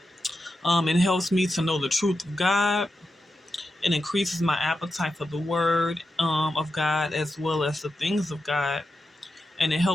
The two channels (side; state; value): both; normal; correlation 0.89